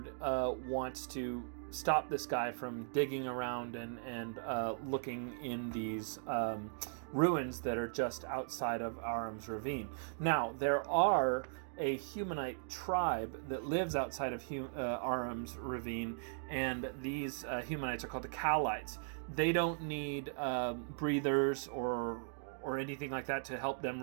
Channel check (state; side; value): silent; left; digital silence